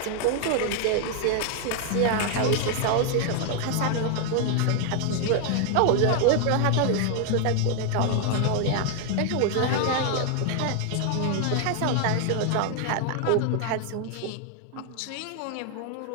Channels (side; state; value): both; different; correlation 0.00